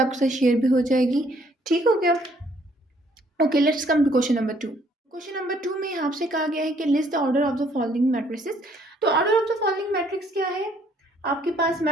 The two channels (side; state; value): both; normal; correlation 0.64